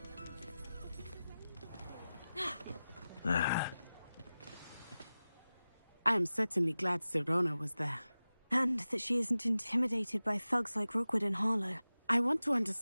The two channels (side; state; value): both; inverted; correlation -0.95